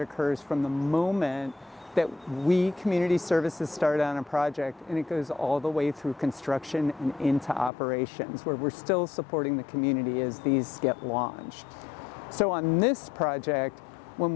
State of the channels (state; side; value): drops out; right; at 7.7 s